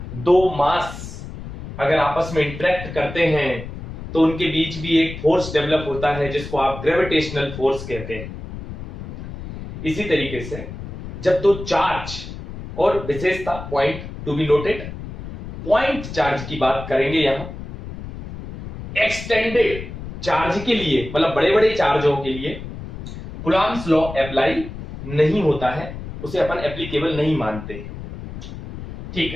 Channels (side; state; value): left; noise; rumble, 11 dB below the sound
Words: दो मास अगर आपस में इंटरेक्ट करते हैं तो उनके बीच भी एक फोर्स डेवलप होता है जिसको आप ग्रेविटेशनल फोर्स कहते हैं। इसी तरीके से जब दो चार्ज, और विशेषता point to be noted, point charge की बात करेंगे यहां, एक्सटेंडेड चार्ज के लिए, मतलब बड़े बड़े चार्जों के लिए कूलॉम्स लॉ अप्लाई नहीं होता है, उसे अपन एप्लीकेबल नहीं मानते। ठीक